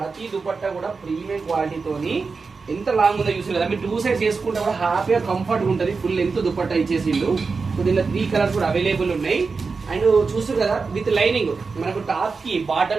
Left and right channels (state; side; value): quieter; left; 4.6 dB